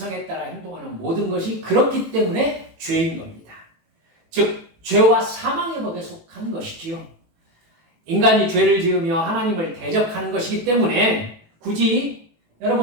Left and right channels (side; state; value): left; late; 18 ms